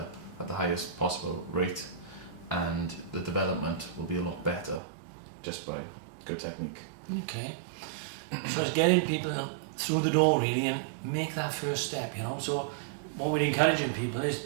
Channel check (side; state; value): left; drops out; at 4.8 s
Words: at the highest possible rate, and the development will be a lot better just by good technique. Okay, so it's getting people through the door really and make that first step, you know. So what we're encouraging people is